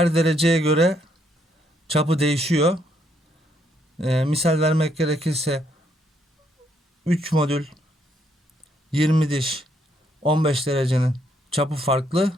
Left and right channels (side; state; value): both; normal; correlation 0.72